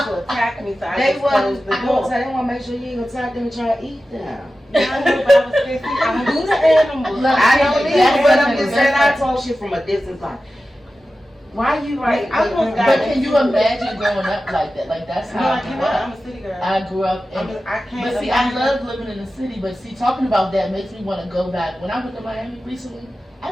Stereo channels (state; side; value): normal; both; correlation 0.94